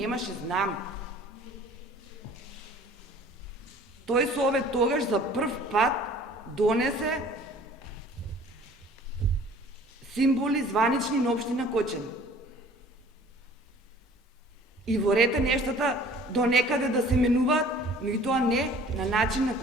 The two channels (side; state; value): both; normal; correlation 0.50